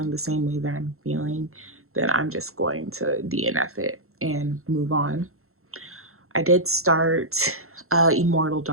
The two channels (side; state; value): left; late; 0.62 ms